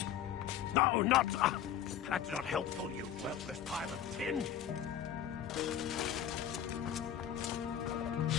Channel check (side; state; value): right; quieter; 9.8 dB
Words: No, not... that's not helpful, you worthless pile of tin!